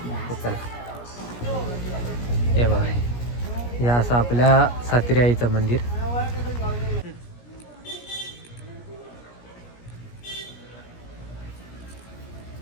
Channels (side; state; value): right; late; 17 ms